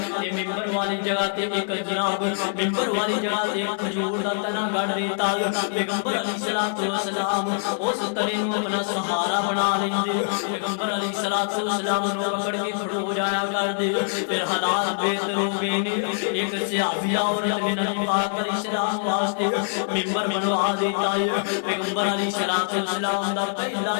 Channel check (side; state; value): right; silent; digital silence